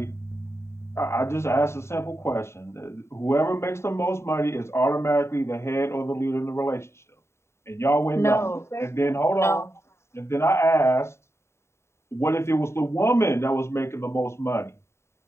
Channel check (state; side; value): late; right; 0.13 ms